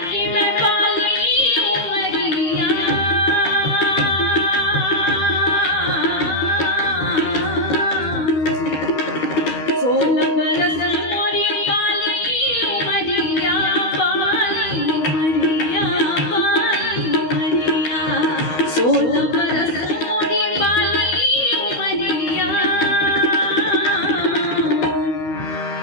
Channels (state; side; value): late; right; 13 ms